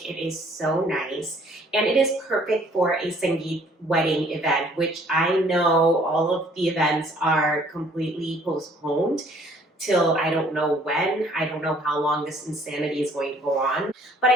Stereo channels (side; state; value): both; normal; correlation 0.59